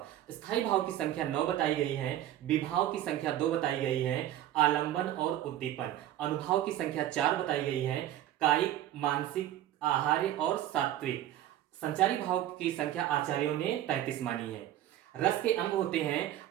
स्थायी भाव की संख्या 9 बताई गई है, विभाव की संख्या 2 बताई गई है, आलंबन और उद्दीपन। अनुभाव की संख्या 4 बताई गई है, कायिक, मानसिक, आहार्य और सात्विक। संचारी भाव की संख्या आचार्यों ने 33 मानी है। रस के अंग होते हैं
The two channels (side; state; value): left; quieter; 12.7 dB